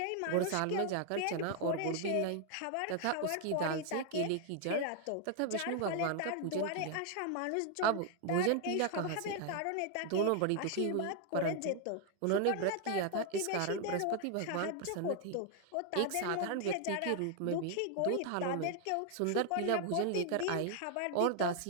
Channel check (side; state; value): both; different; correlation 0.00